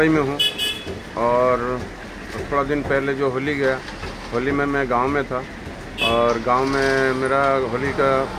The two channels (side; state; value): both; identical; correlation 1.00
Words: में हूँ और थोड़ा दिन पहले जो होली गया, होली में मैं गांव में था और गांव में मेरा होली का